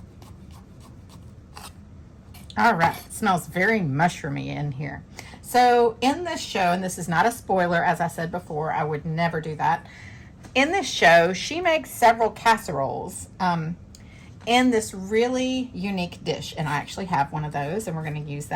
All right, it smells very mushroomy in here. So in this show, and this is not a spoiler, as I said before, I would never do that. In this show, she makes several casseroles in this really unique dish, and I actually have one of those, and we're going to use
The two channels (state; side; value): identical; both; correlation 1.00